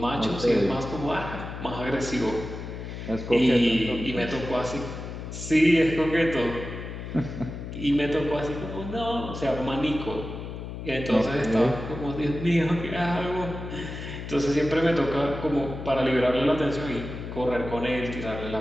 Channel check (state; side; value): noise; left; hum, 8 dB below the sound